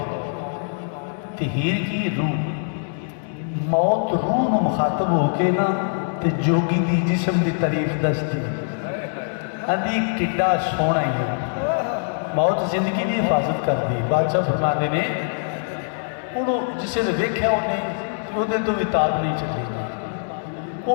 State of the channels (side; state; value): right; silent; digital silence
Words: ते हीर की रूह। मौत रूह नूं मुखातब होके ना ते जोगी दी जिस्म की तारीफ दसदी आंदी किड्डा सोहना ही है। मौत जिंदगी की हिफाजत करती। बादशाह फरमाते ने उन्होंने जिसे ने वेख्या उन्हें वो तो भी ताब नहीं चली। वो